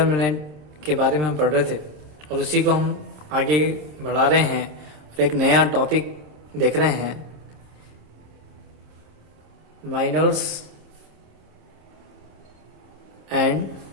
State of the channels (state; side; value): late; left; 26 ms